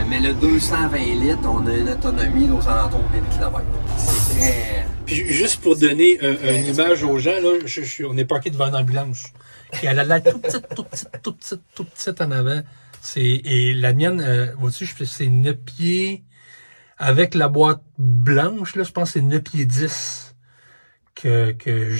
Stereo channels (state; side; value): inverted; both; correlation -1.00